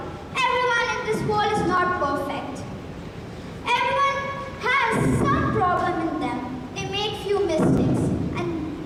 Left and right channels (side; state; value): both; identical; correlation 1.00